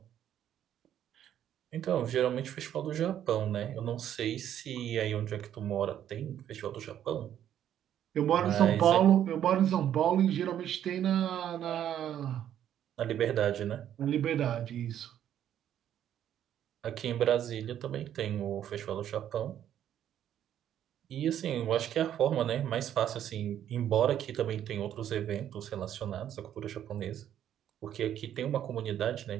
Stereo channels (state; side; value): quieter; left; 10.5 dB